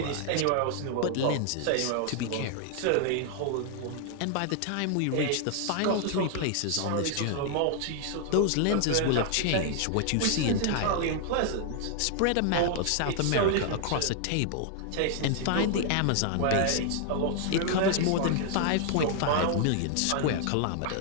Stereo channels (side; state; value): both; different; correlation 0.00